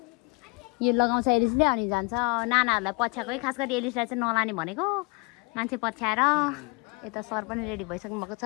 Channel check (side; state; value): right; quieter; 31.4 dB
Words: यो लगाउँछ एलिसले अनि जान्छ। नानाहरूलाई पछ्याएको है, खास गरी एलिसलाई चाहिँ नलाने भनेको। मान्छे पछ्याएर यता सर पनि रेडी भइसक्नु भएको